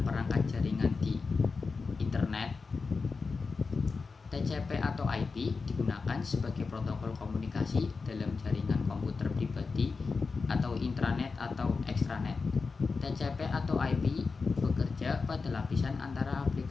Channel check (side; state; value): right; quieter; 4.5 dB